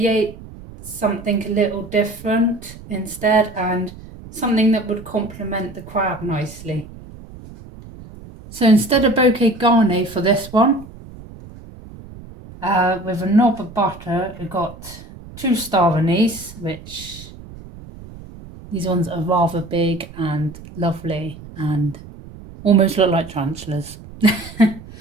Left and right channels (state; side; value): noise; right; rumble, 17 dB below the sound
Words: something a little different instead, and something that would complement the crab nicely. So instead of bouquet garni for this one, with a knob of butter, we've got 2 star anise, which these ones are rather big and lovely and almost look like tarantulas.